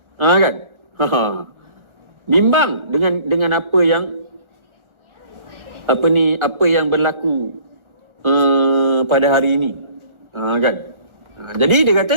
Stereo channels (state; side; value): late; left; 1.4 ms